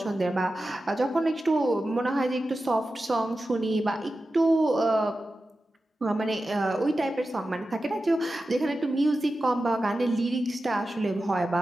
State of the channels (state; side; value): normal; both; correlation 0.93